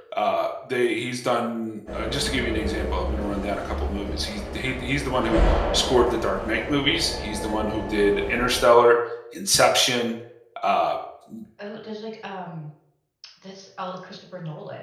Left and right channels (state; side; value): identical; both; correlation 1.00